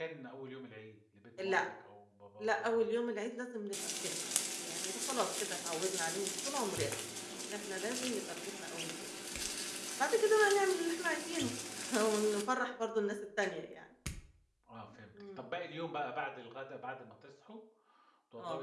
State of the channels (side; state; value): both; identical; correlation 1.00